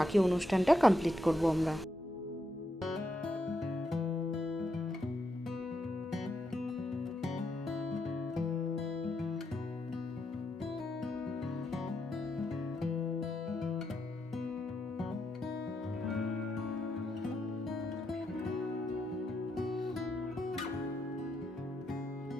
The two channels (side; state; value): both; normal; correlation 0.81